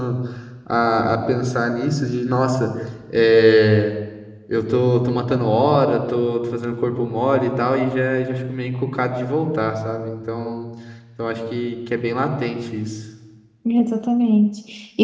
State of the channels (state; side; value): identical; both; correlation 1.00